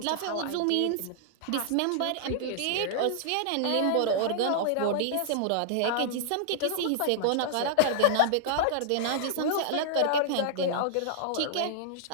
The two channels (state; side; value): different; both; correlation -0.01